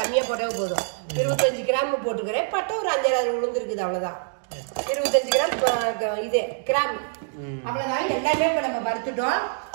போட்டால் போதும். 25 கிராம் போட்டுக்கிறேன். பட்டை ஒரு 5-6 உளுந்து இருக்குது, அவ்வளோதான். 25 கிராம் இது கிராம், அவ்வளோதான். எல்லாமே இப்போ நம்ம வறுத்துட்டோம்.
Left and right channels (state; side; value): silent; left; digital silence